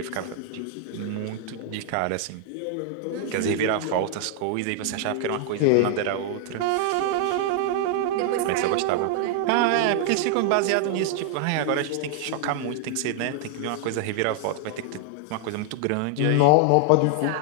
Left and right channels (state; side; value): different; both; correlation 0.00